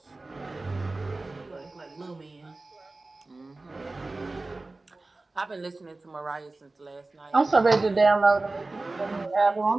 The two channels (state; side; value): quieter; left; 3.2 dB